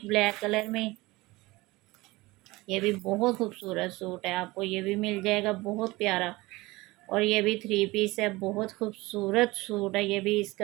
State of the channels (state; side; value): quieter; left; 21.0 dB